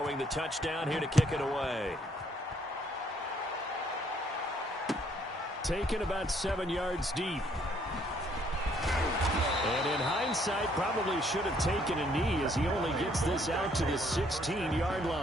the touchdown here to kick it away. Taken about 7 yards deep. And in hindsight, probably should have taken a knee as he only gets this out to the 16-yard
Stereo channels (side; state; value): both; normal; correlation 0.66